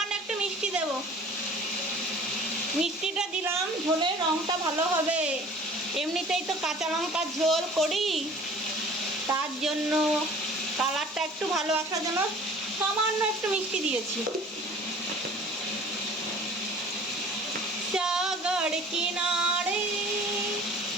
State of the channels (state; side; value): normal; both; correlation 0.47